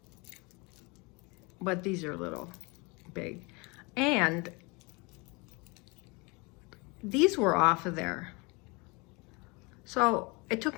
but these are a little big. And these were off of there. So it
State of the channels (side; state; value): right; quieter; 27.9 dB